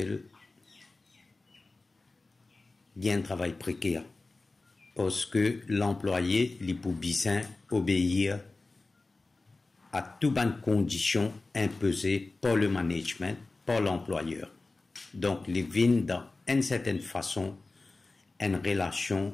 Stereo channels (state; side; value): quieter; right; 3.4 dB